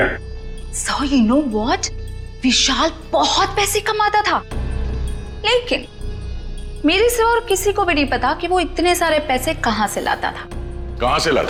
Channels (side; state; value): both; identical; correlation 1.00